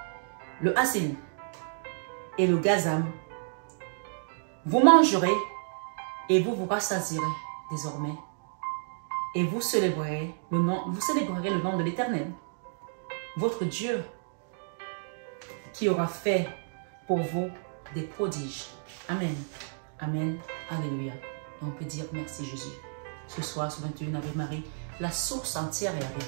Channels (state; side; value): silent; left; digital silence